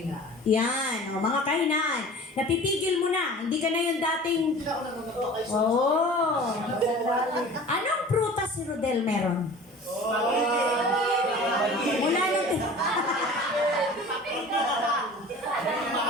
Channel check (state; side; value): normal; both; correlation 0.42